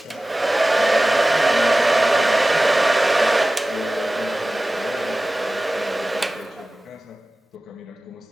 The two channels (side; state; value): both; normal; correlation 0.97